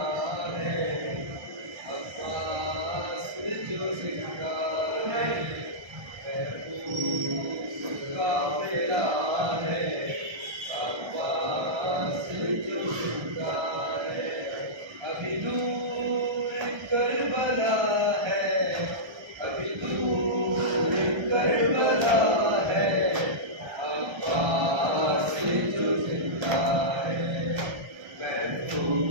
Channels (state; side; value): late; left; 1.3 ms